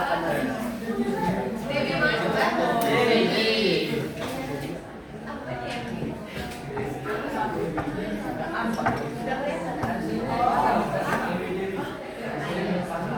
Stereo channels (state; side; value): identical; both; correlation 1.00